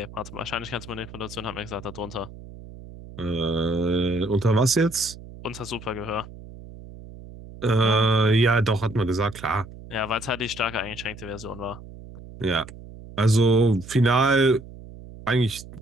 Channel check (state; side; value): noise; right; hum, 16 dB below the sound